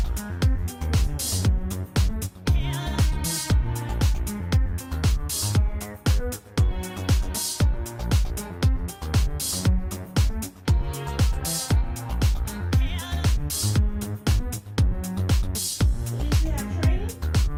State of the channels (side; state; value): both; identical; correlation 1.00